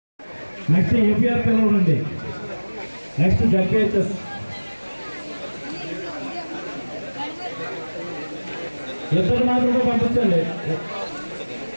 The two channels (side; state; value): both; inverted; correlation -1.00